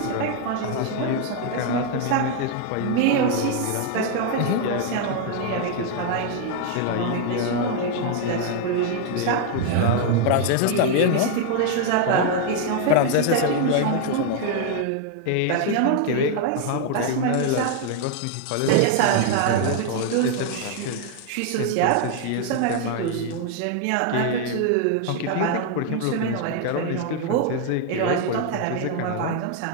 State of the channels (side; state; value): both; different; correlation 0.00